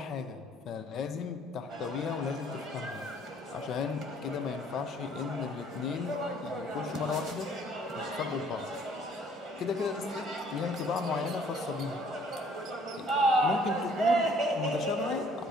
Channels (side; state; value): both; normal; correlation 0.59